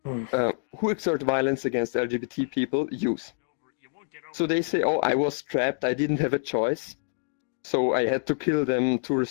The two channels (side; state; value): right; silent; digital silence